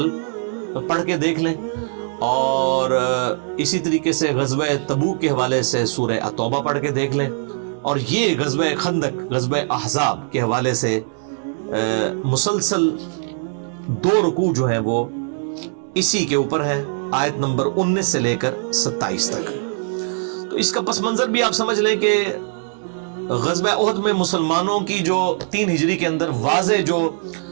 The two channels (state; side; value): silent; left; digital silence